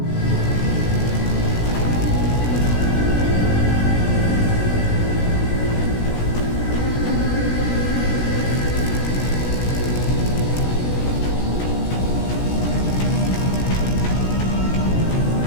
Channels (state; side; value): late; right; 17 ms